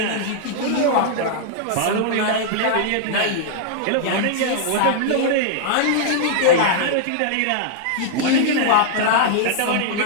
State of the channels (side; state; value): both; different; correlation -0.01